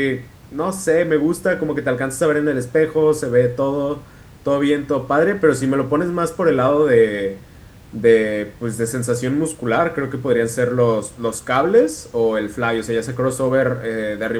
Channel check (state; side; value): identical; both; correlation 1.00